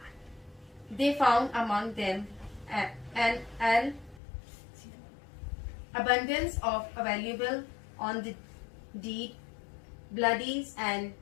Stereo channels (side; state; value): right; drops out; at 4.2 s